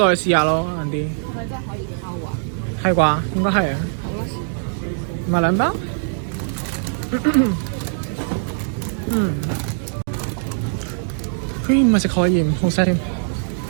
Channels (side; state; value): left; silent; digital silence